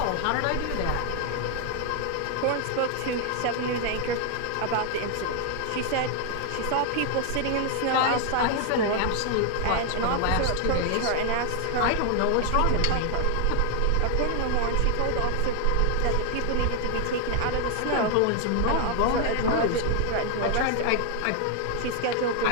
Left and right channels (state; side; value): different; both; correlation 0.00